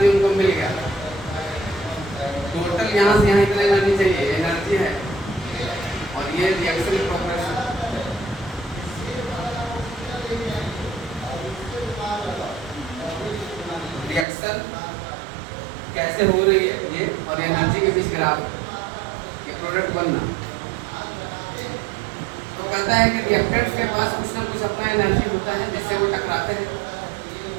उनको मिल गया, टोटल यहाँ से यहाँ इतना एनर्जी चाहिए, एनर्जी है, और ये रिएक्शन प्रोग्रेस। रिएक्शन कैसे हो रही है ये और एनर्जी के बीच ग्राफ, ये प्रोडक्ट बनना। तो कहता है कि रिएक्टेंट्स के पास कुछ ना कुछ अपना एनर्जी होता है जिससे वो टकराते हैं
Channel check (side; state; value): left; drops out; at 14.2 s